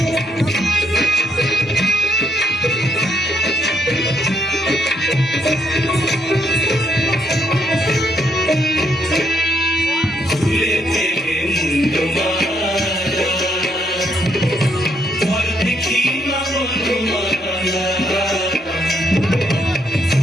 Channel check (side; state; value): both; normal; correlation 0.74